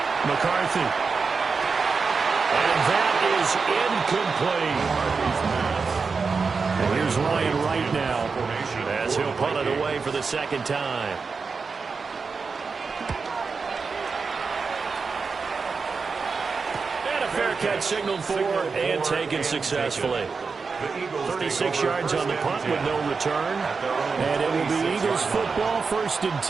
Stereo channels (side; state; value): left; quieter; 4.9 dB